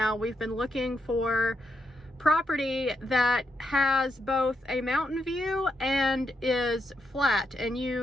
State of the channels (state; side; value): normal; both; correlation 0.81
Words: we've been looking for property that has both a mountain view and is flat, and